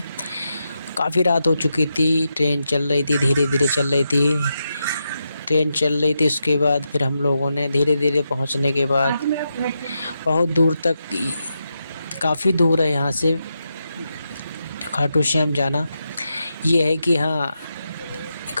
काफ़ी रात हो चुकी थी, ट्रेन चल रही थी, धीरे धीरे चल रही थी, ट्रेन चल रही थी। उसके बाद फिर हम लोगों ने धीरे धीरे पहुँचने के बाद बहुत दूर तक, काफ़ी दूर है यहाँ से खाटू श्याम जाना। ये है कि हाँ,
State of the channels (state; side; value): inverted; both; correlation -0.86